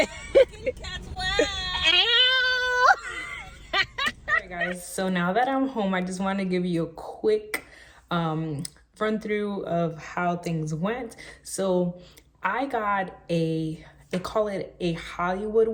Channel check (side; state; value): both; identical; correlation 1.00